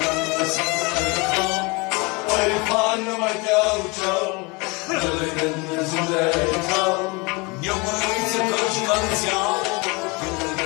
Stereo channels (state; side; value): quieter; right; 27.8 dB